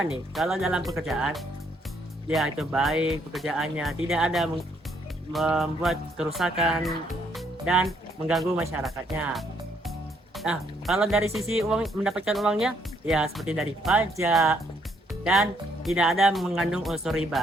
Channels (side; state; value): both; normal; correlation 0.70